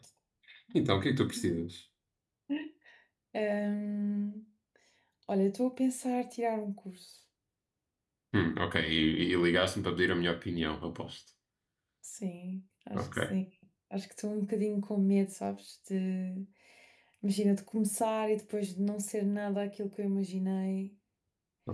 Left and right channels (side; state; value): both; identical; correlation 1.00